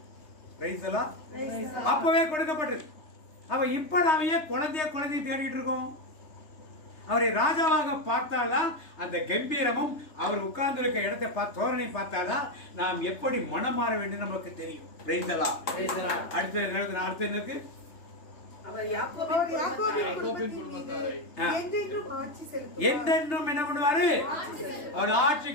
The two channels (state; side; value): late; right; 3.3 ms